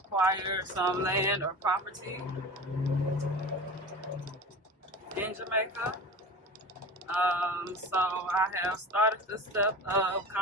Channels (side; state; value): both; normal; correlation 0.33